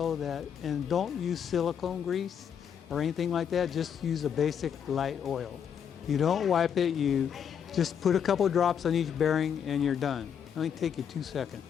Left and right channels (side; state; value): right; quieter; 8.0 dB